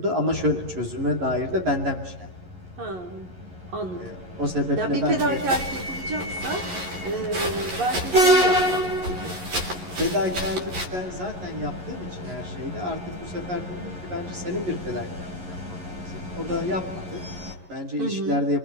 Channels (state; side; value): late; left; 11 ms